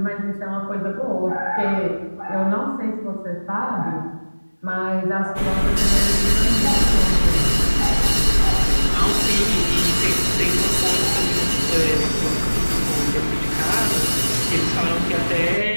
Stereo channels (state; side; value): inverted; both; correlation -1.00